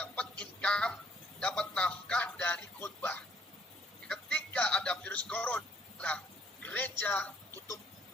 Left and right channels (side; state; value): both; normal; correlation 0.65